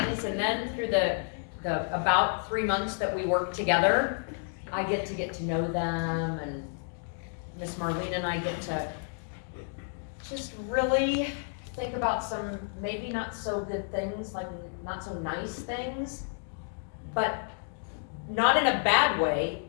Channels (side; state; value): right; silent; digital silence